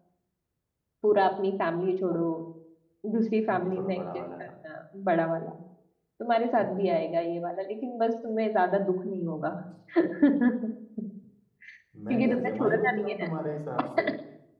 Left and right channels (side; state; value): both; identical; correlation 1.00